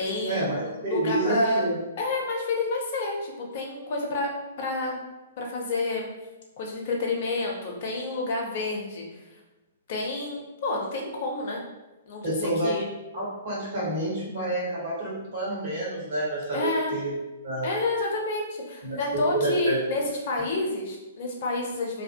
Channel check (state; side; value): inverted; both; correlation -0.46